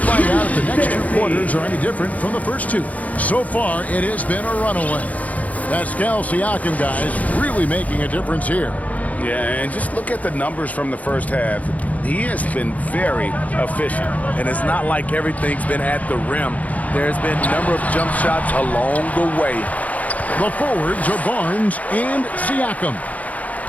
out if the next two quarters are any different from the first two. So far, it has been a runaway. Pascal Siakam, guys, really making a difference here. Yeah, and just look at the numbers from the first half. He has been very efficient. And it's not like everything's been at the rim. There's been a number of jump shots along the way. The forwards are Barnes and Siakam.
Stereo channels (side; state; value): right; late; 0.072 ms